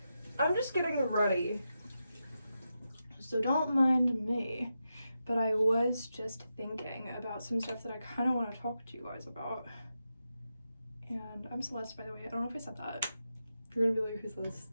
I'm just getting ready, so don't mind me, but I was just thinking about some stuff that I kind of want to talk to you guys about. And I'm Celeste, by the way. I don't know if I said that. You're gonna be like, who's this?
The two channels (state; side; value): inverted; both; correlation -0.88